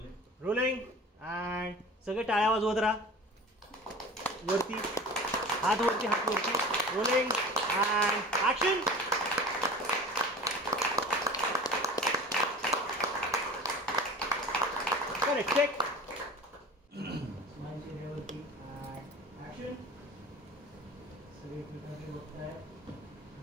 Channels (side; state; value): both; normal; correlation 0.38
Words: रोलिंग अँड सगळे टाळ्या वाजवत राहा. वरती हात वरती हात वरती. Rolling and action. Correct check. Smile चेहऱ्यावरती अँड ॲक्शन. सगळे एकमेकांकडे बघताय.